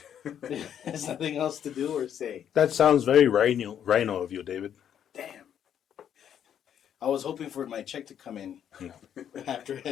There's nothing else to do or say. That sounds very rhino of you, David. Damn. I was hoping for my check to come in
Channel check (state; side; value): quieter; right; 9.3 dB